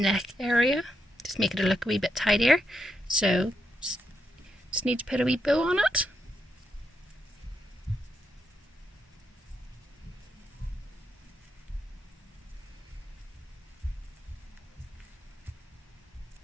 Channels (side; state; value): both; normal; correlation 0.81